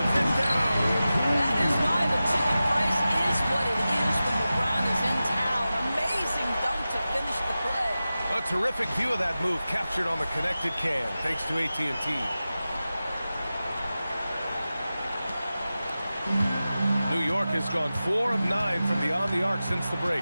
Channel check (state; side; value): inverted; both; correlation -0.95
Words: it down. That is why the ticket price is what it is when LeBron is in town. Amazing dunk to finish the play. A terrific view of that move captured on the connected cam, thanks to AT&T. New York has gone 4 of 9 from beyond the arc since the